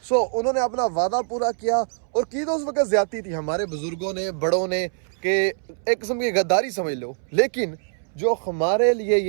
सो उन्होंने अपना वादा पूरा किया और की तो उस वक्त ज्यादती थी हमारे बुजुर्गों ने, बड़ों ने, कि एक किस्म की गद्दारी समझ लो। लेकिन जो हमारे लिए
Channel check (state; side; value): silent; left; 63 dB below the other